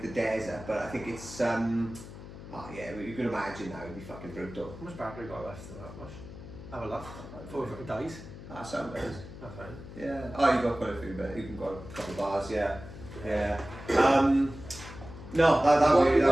the desert. But I think it's you can imagine that would be fucking brutal. How much battery got left in that much? Have a look. Before it fucking dies. That sounds nice. That's fine. Yeah. Oh, you got quite a few, but you can got a couple of bars. Yeah. No, that you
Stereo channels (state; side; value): noise; left; hum, 14 dB below the sound